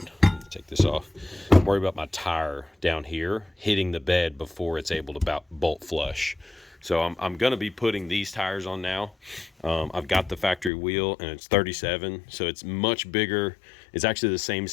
take this off, I'm worried about my tire down here hitting the bed before it's able to bolt flush. So I'm gonna be putting these tires on now. I've got the factory wheel, and it's 37, so it's much bigger. It's actually the same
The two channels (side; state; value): right; drops out; at 10.7 s